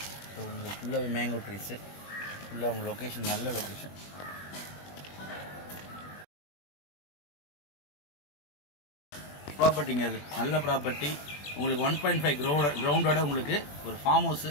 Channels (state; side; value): late; right; 21 ms